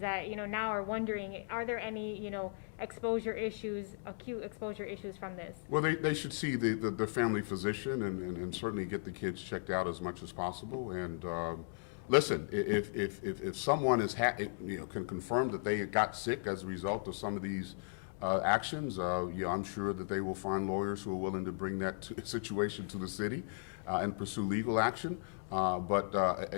that, now are wondering, are there any, exposure issues, acute exposure issues from this? Well, they should see the family physician and certainly get the kids checked out as much as possible. And listen, if someone can confirm that they got sick as a result of some of these actions, I'm sure that they will find lawyers who are willing to bring that situation to the city and pursue legal action. But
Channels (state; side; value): silent; right; digital silence